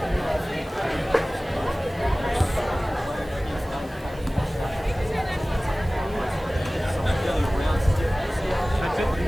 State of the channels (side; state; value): both; normal; correlation 0.98